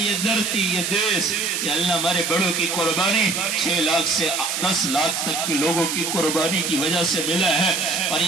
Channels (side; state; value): right; noise; hiss, 2 dB below the sound